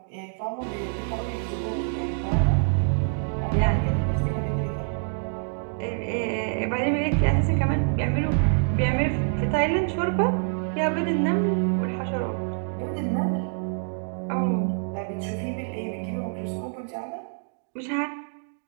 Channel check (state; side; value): silent; left; 61 dB below the other